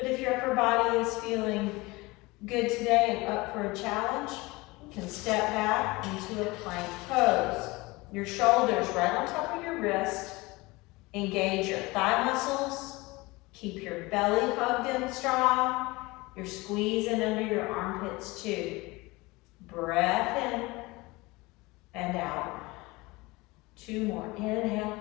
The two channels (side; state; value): right; quieter; 22.7 dB